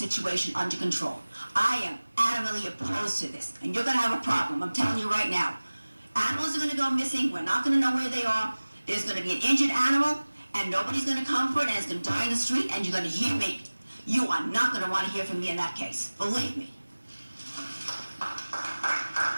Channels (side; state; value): both; inverted; correlation -1.00